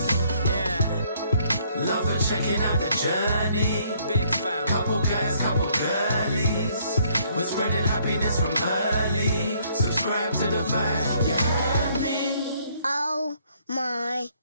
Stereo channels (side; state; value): both; inverted; correlation -0.66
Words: Yeah. Love for checking out the journey. Big fam. Couple guys, couple girlies. We're spreading happiness from early. Subscribe to the vibe, you heard me? Oh my